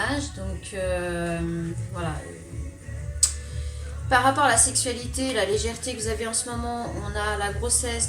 âge. Donc voilà. Par rapport à la sexualité, la légèreté que vous avez en ce moment, on a la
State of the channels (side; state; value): both; identical; correlation 1.00